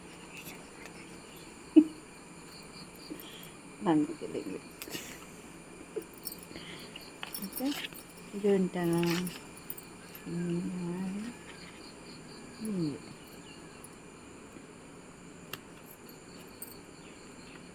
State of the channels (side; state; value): both; identical; correlation 1.00